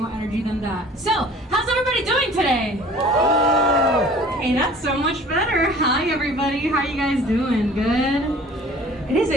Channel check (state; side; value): normal; both; correlation 0.48